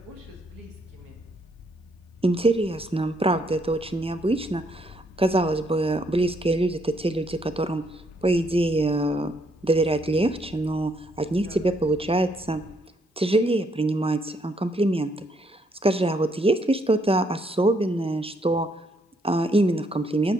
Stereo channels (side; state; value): both; normal; correlation 0.72